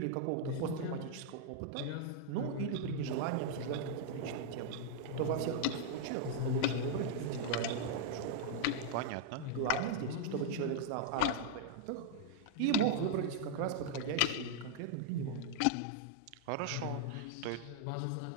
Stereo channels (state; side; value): different; both; correlation 0.00